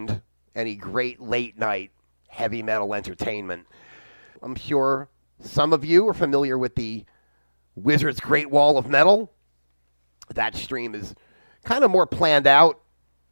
any great late-night heavy metal entertainment. I'm sure some of you are familiar with the Wizard's Great Wall of Metal. That stream is kind of more planned out,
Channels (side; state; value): both; inverted; correlation -1.00